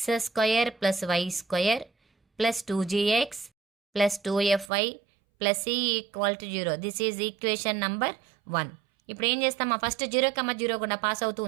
square plus y square plus 2gx plus 2fy plus c equal to 0. This is equation number 1. ఇప్పుడు ఏం చేస్తామా ఫస్ట్ 0, 0 కూడా పాస్ అవుతూ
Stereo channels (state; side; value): drops out; left; at 4.7 s